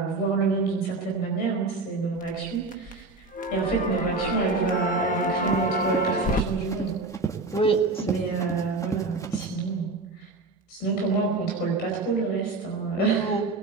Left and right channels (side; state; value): left; quieter; 3.4 dB